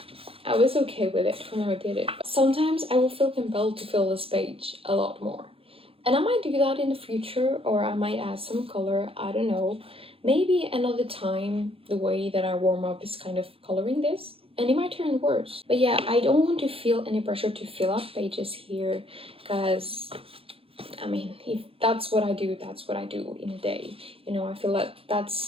I was okay with it when I did it. But sometimes I will feel compelled to fill this page a lot more, and I might do that in the future, or I might add some color, I don't know. Maybe another time the way that I warm up is kind of coloring this, and it might turn worse. But yeah, I don't want to feel any pressure to fill up pages here, because I mean, if that's what I do, that's what I do in a day. You know, I feel like that's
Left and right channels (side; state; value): left; late; 0.27 ms